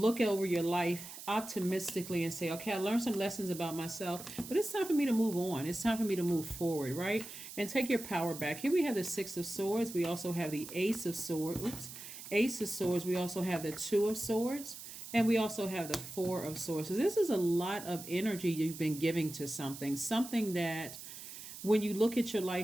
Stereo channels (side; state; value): right; noise; hiss, 12 dB below the sound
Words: over your life optimistically and say, okay, I learned some lessons about myself, but it's time for me to move on. It's time for me to move forward, right? And take your power back. Here we have the Six of Swords. We also have the Ace of Swords. Ace of Swords. We also have the Two of Swords. And we also have the Four of Swords. So this is a lot of energy you've been giving to something that when you look at your